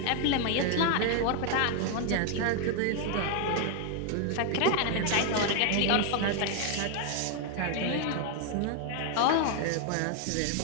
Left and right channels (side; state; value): both; different; correlation 0.00